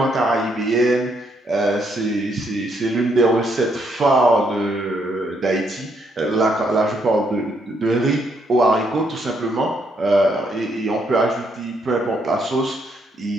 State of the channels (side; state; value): both; normal; correlation 0.74